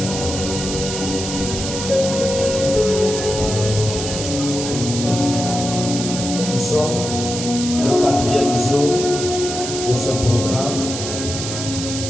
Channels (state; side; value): noise; right; hiss, 6 dB below the sound